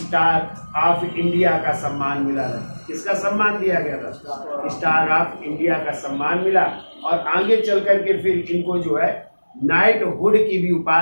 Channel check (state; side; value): inverted; both; correlation -1.00